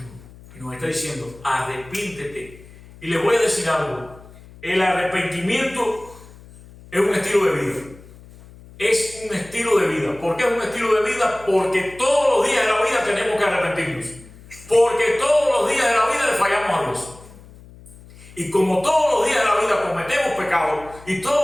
Y nos está diciendo, arrepíntete. Y les voy a decir algo. El arrepentimiento es un estilo de vida. Es un estilo de vida. ¿Por qué es un estilo de vida? Porque todos los días de la vida tenemos que arrepentirnos. Porque todos los días de la vida le fallamos a Dios. Y como todos los días de la vida cometemos pecado y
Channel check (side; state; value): left; noise; hum, 21 dB below the sound